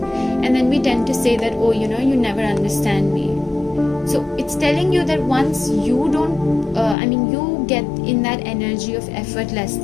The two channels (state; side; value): drops out; right; at 7.0 s